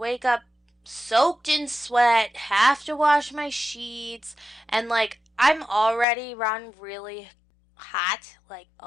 up soaked in sweat, have to wash my sheets, and like I'm already run really hot, like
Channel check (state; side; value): drops out; right; at 6.1 s